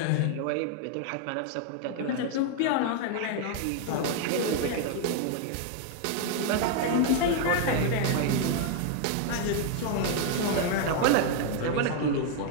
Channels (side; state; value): both; different; correlation 0.00